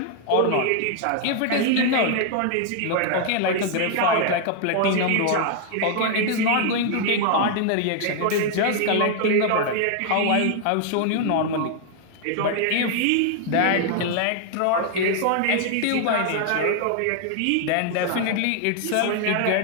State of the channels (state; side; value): different; both; correlation 0.00